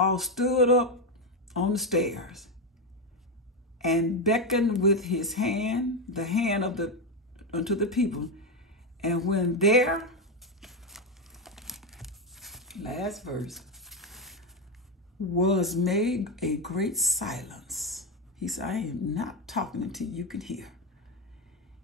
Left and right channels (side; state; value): both; normal; correlation 0.09